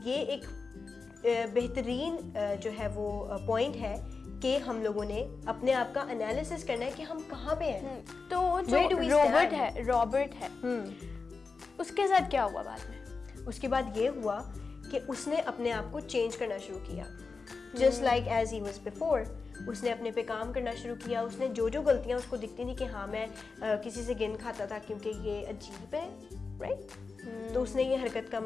ये एक बेहतरीन जो है वो पॉइंट है कि हम लोगों ने अपने आप का एनालिसिस करना है कि हम कहाँ पे हैं। तो जो रॉबर्ट है उसके साथ क्या हुआ बाद में? उसके बाद ये हुआ कि उसने अपने आप को चेंज करना शुरू किया, just like as he was before. उसने अपने पे काम करना शुरू किया, उसने जो जो गलतियाँ उसको दिखती थी कि हाँ मैं किसी से गिन खाता था क्योंकि ये अजीब है, राइट। तो उसने ये हरकत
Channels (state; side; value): quieter; right; 4.5 dB